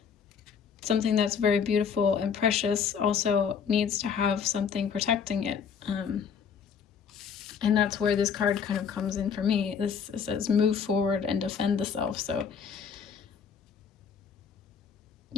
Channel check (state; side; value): quieter; right; 6.8 dB